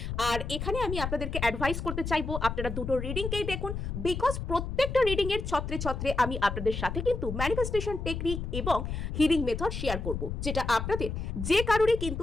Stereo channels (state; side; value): noise; left; rumble, 4 dB below the sound